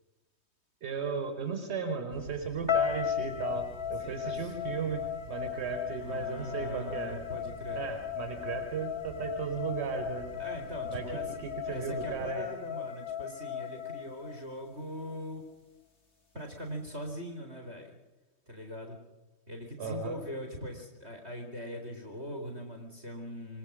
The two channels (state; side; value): late; left; 3.2 ms